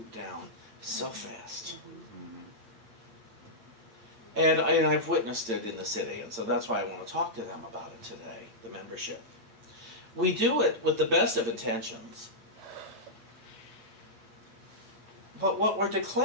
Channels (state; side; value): late; left; 8.8 ms